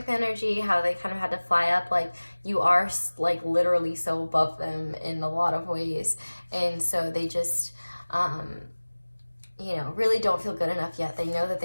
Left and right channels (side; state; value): both; inverted; correlation -1.00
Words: energy, how they kind of had to fly up, like you are like literally so above them in a lot of ways, and so they just you know, really don't feel good enough yet. They know that